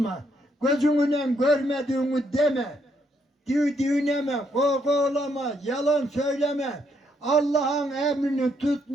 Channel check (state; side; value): normal; both; correlation 0.74